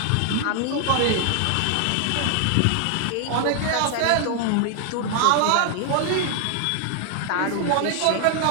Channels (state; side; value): different; both; correlation 0.00